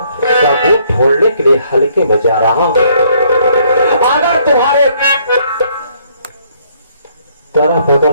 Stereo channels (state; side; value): inverted; both; correlation -0.66